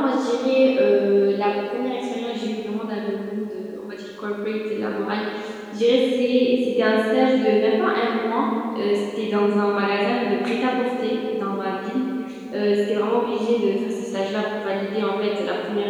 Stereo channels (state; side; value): identical; both; correlation 1.00